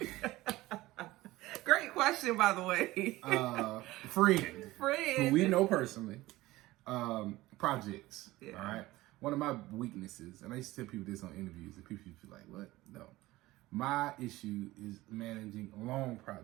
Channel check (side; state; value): left; quieter; 18.2 dB